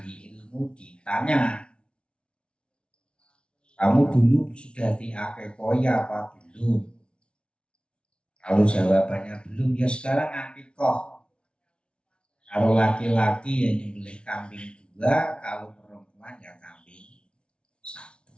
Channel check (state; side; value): late; right; 0.058 ms